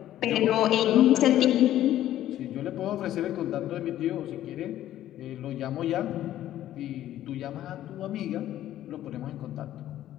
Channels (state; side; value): quieter; right; 12.9 dB